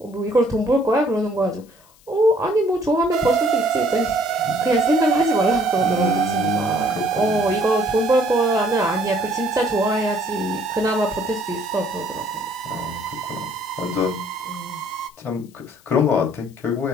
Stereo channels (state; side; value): noise; left; hiss, 29 dB below the sound